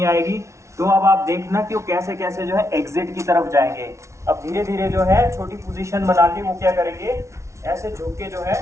आएगी, तो अब आप देखना कि वो कैसे कैसे जो है एग्जिट की तरफ जाएंगे। अब धीरे धीरे जो है छोटी पोजीशन बना के वो क्या करेंगे, ऐसे झुक के जो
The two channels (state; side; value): late; left; 0.14 ms